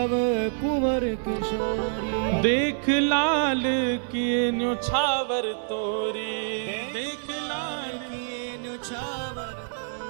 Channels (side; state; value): left; silent; 60 dB below the other